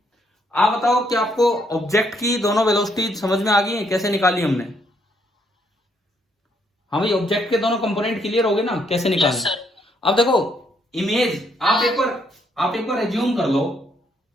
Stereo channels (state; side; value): normal; both; correlation 0.72